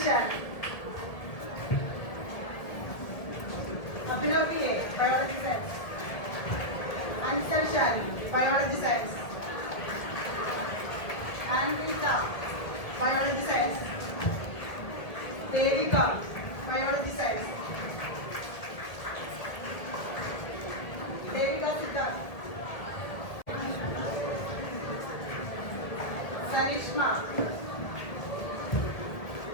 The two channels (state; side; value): late; right; 1.8 ms